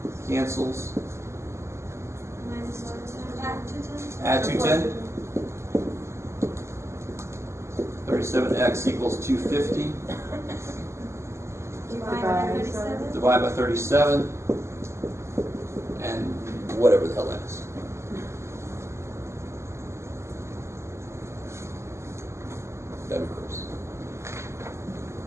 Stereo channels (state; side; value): late; left; 0.13 ms